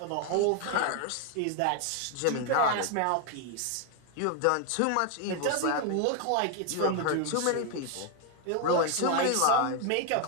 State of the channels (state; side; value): different; both; correlation 0.01